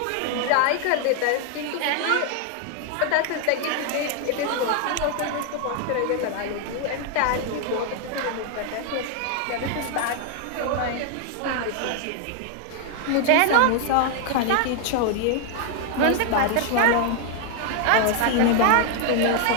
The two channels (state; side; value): different; both; correlation 0.00